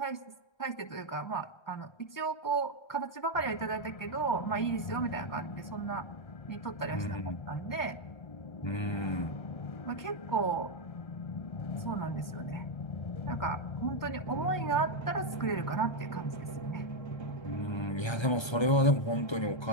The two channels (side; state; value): right; late; 1.3 ms